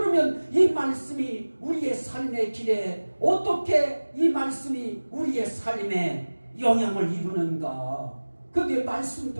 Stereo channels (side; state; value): both; inverted; correlation -1.00